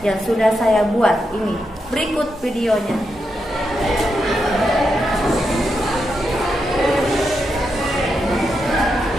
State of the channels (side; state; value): both; normal; correlation 0.84